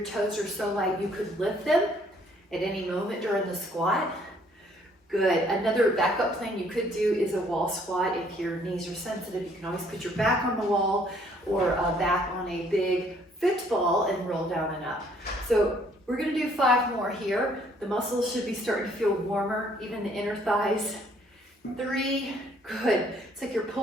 toes are so light you could lift them at any moment during the squat. Good. Another backup plan you could do is a wall squat. If your knees are sensitive, you can always put your back on the wall or back on a big football and roll down and up. So we're going to do 5 more here. The muscles should be starting to feel warmer, even the inner thighs. 3, good. It's like you're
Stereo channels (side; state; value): both; normal; correlation 0.63